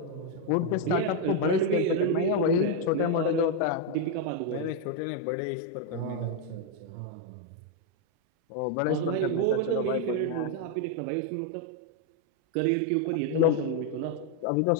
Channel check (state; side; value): different; both; correlation 0.01